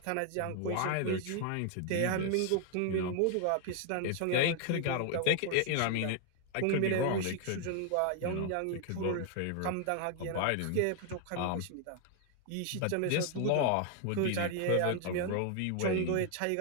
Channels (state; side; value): different; both; correlation 0.00